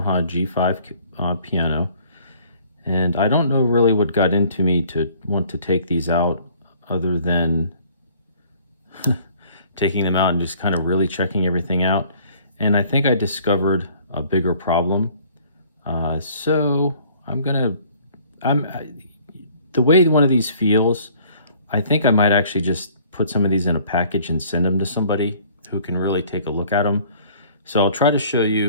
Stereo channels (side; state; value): both; inverted; correlation -0.56